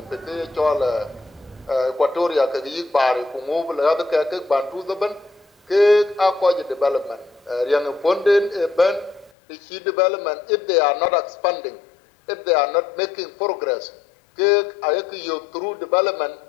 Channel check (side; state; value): right; drops out; at 9.3 s